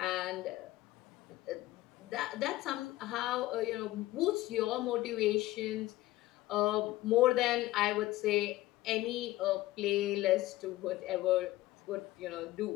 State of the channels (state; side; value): quieter; right; 17.0 dB